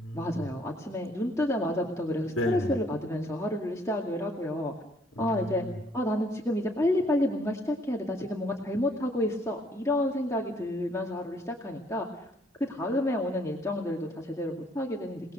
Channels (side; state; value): both; normal; correlation 0.64